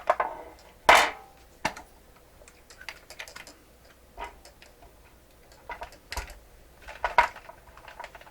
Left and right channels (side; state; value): both; identical; correlation 1.00